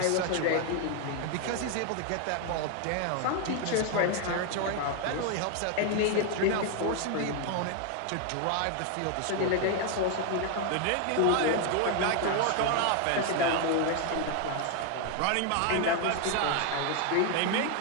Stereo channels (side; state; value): both; different; correlation 0.01